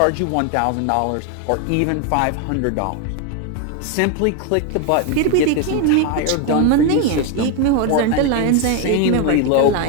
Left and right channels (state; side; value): different; both; correlation 0.01